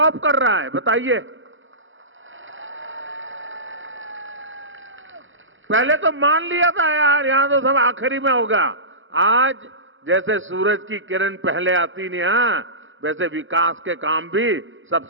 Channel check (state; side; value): late; left; 0.57 ms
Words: कर रहा है। बताइए, पहले तो मान लिया था यार यहां तो सब आखिरी में होगा। आज जैसे सूरज की किरण पहले आती नहीं, वैसे विकास के काम भी